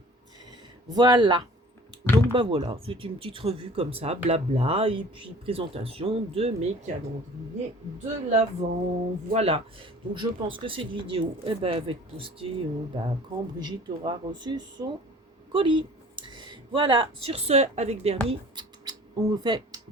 Voilà. Donc voilà, c'est une petite revue comme ça, blabla, et puis présentation de mes calendriers de l'Avent. Voilà. Donc je pense que cette vidéo, va être postée quand Brigitte aura reçu son colis. Voilà. Sur ce, avec Bernie, on vous fait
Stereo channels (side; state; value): both; normal; correlation 0.48